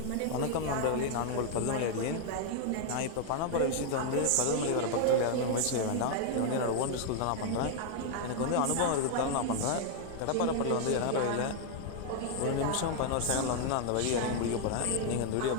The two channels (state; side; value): different; both; correlation 0.00